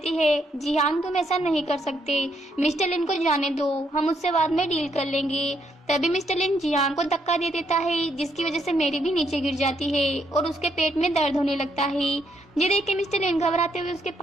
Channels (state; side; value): normal; both; correlation 0.74